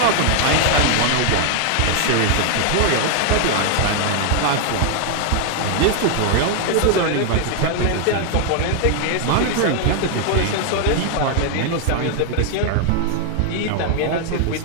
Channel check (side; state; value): both; different; correlation 0.00